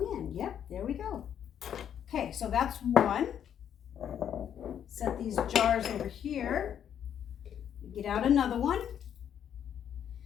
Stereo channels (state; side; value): quieter; right; 9.2 dB